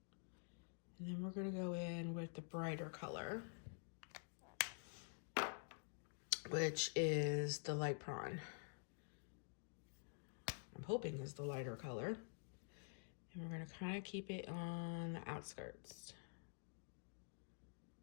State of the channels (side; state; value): right; silent; digital silence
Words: And then we're going to go in with the brighter color, which is the light prawn. I'm hoping is the lighter color. And we're going to kind of keep it on the outskirts.